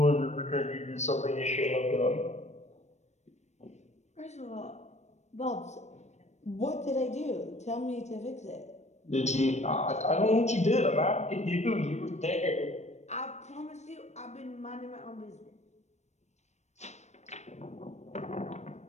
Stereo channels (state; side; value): late; right; 0.33 ms